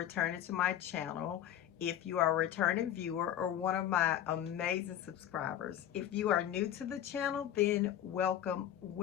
to my channel. If you are a returning viewer or one of my amazing subscribers, if you are new to the channel, then welcome,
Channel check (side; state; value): right; quieter; 11.0 dB